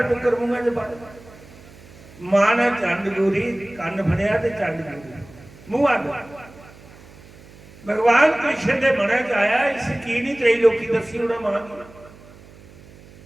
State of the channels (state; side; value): noise; right; hum, 22 dB below the sound